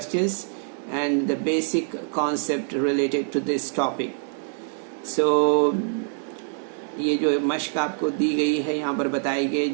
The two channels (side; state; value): left; silent; 61 dB below the other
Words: and the basic concept related to this topic. So ये जो मश्क आपको दी गई है यहाँ पर बताई गई,